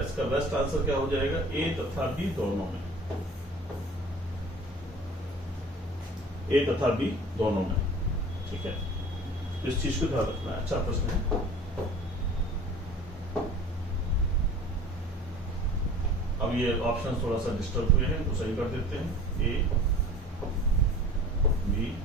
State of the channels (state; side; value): normal; both; correlation 0.43